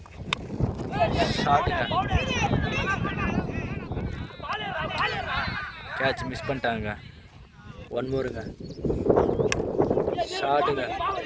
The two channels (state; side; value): identical; both; correlation 1.00